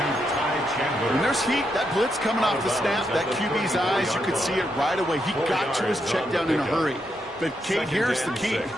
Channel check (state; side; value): normal; both; correlation 0.81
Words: When there's heat, that blitz coming off the snap, that QB's eyes, you could see it right away. He got to his check down in a hurry. But, Kate, here's the key.